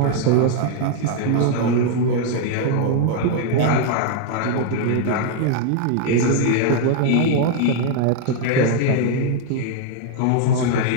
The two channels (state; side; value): different; both; correlation 0.00